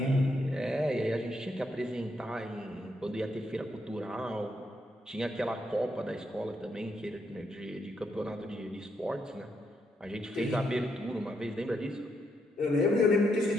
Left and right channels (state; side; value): normal; both; correlation 0.78